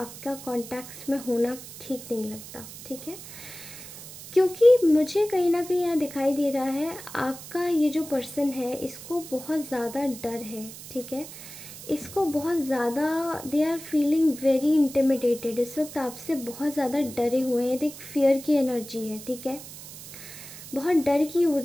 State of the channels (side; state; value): right; noise; hiss, 14 dB below the sound